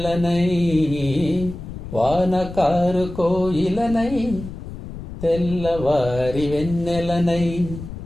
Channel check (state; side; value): noise; left; rumble, 10 dB below the sound